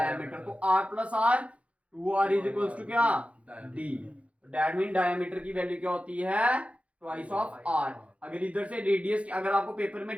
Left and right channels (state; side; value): late; left; 0.063 ms